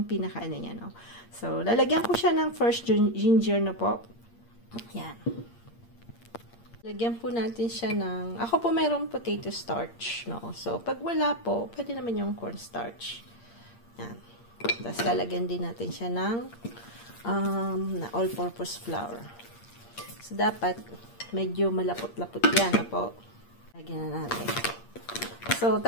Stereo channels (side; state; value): right; late; 8.6 ms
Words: pinaka niya, no? So, lalagyan ko siya ng first ginger na po. Yan. Lagyan po natin siya ng, ako po mayroong potato starch, no? So, pag wala po, pwede naman yung cornstarch. Yan. Tapos, lalagyan din natin siya ng all-purpose flour. So, dapat medyo malapot-lapot yan, na po. Lagyan na natin. So,